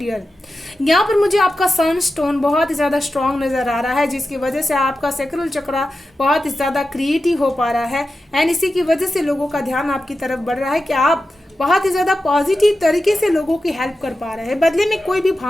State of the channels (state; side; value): normal; both; correlation 0.92